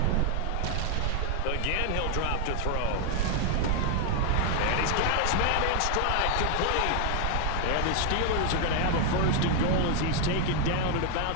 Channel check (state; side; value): different; both; correlation 0.00